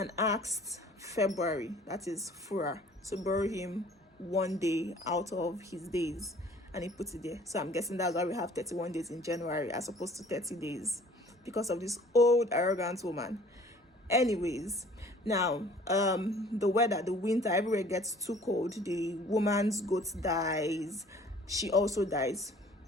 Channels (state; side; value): normal; both; correlation 0.52